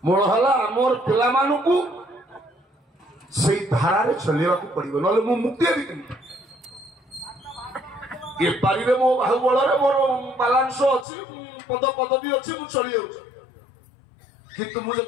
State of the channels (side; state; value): right; drops out; at 11.1 s